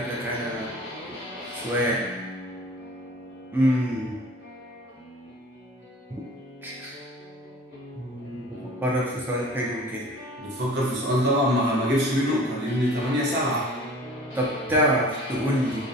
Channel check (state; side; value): normal; both; correlation 0.44